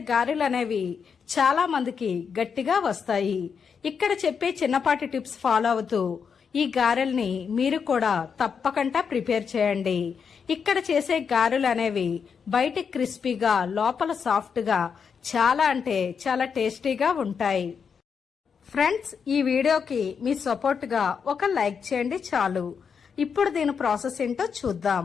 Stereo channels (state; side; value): quieter; right; 6.4 dB